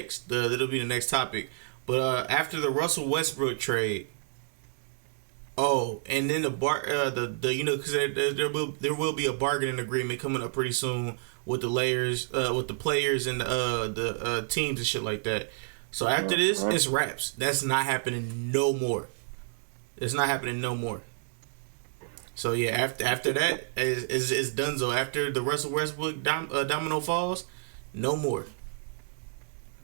That'll be the next topic. But after the Russell Westbrook trade, and then because there will be a bargaining agreement coming up pretty soon with the players and the teams and shit like that. So after this, it's wraps. That's not happening no more. It's not happening no more. So yeah, after that is donezo. After the Russell Westbrook domino falls, no more.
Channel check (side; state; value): left; silent; digital silence